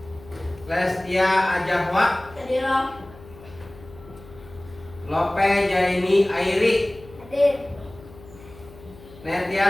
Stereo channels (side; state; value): left; noise; hum, 20 dB below the sound